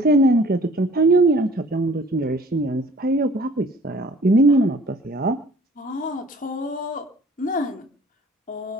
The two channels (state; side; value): normal; both; correlation 0.52